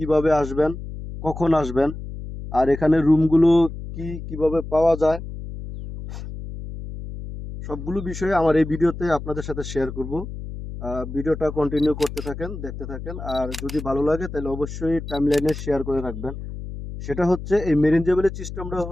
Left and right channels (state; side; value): noise; left; hum, 9 dB below the sound